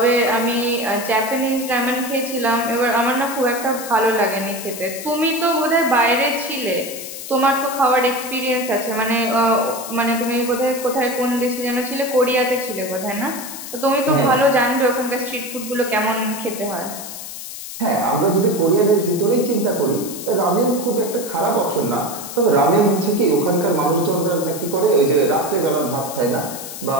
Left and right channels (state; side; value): noise; left; hiss, 10 dB below the sound